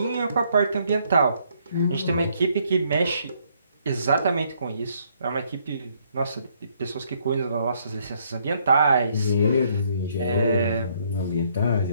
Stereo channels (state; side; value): inverted; both; correlation -0.69